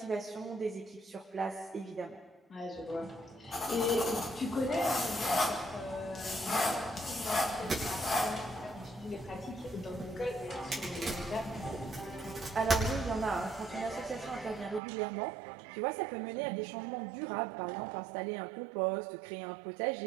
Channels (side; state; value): left; drops out; at 14.8 s